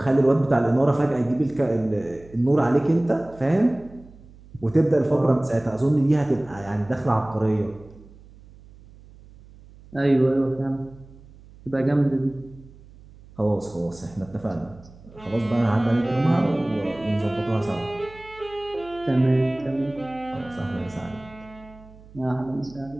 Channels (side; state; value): right; noise; hum, 22 dB below the sound